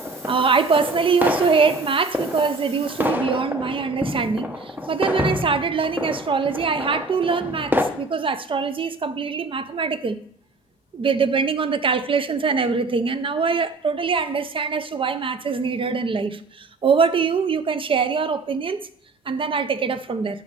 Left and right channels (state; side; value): quieter; left; 4.0 dB